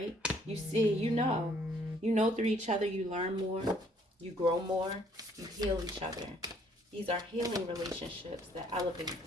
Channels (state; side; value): normal; both; correlation 0.64